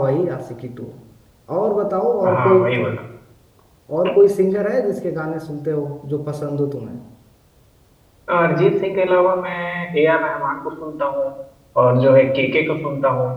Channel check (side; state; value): both; identical; correlation 1.00